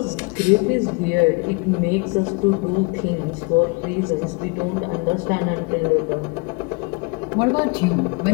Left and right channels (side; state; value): right; quieter; 28.4 dB